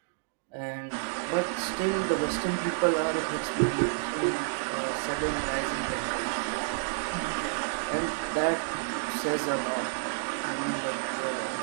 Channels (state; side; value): silent; left; digital silence